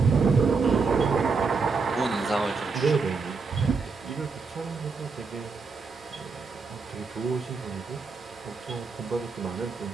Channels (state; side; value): quieter; left; 4.7 dB